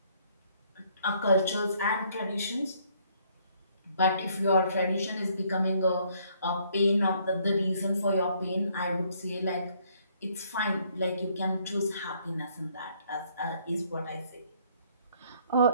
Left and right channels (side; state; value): both; inverted; correlation -0.65